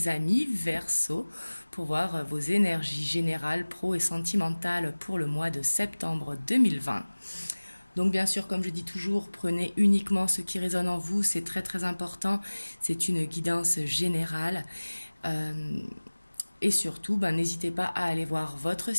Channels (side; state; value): both; inverted; correlation -1.00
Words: amis Verseau, pour voir vos énergies générales, pro et sentimentales pour le mois de septembre 2020. Donc bien sûr, comme je dis toujours, prenez uniquement ce qui résonne en vous, c'est très très important. C'est une guidance générale. Et surtout, n'hésitez pas à aller voir votre